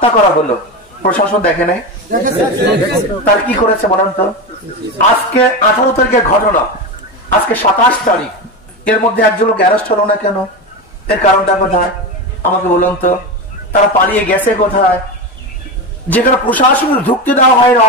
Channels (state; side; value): normal; both; correlation 0.19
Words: করা হলো, প্রশাসন দেখে নাই? তার কি করেছে বলেন তো? আজকে 18 তারিখের ঘটনা, আজকে 27 তারিখ, এর মধ্যে একজন লোক অ্যারেস্ট হলো না কেন? এর কারণটা কোথায় আমাকে বলুন তো? তারা পালিয়ে গেছে কোথায়? যেখানে প্রশাসনের ঢুকতে দেওয়া হয় না,